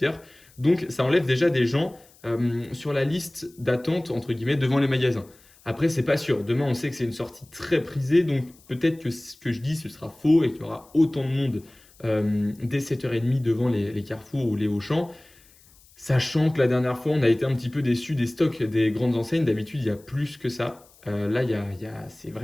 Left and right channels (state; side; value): noise; left; hiss, 28 dB below the sound